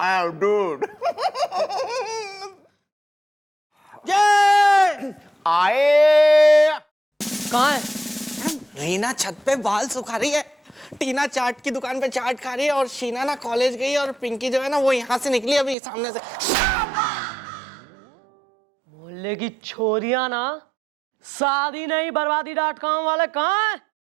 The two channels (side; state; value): left; drops out; at 15.8 s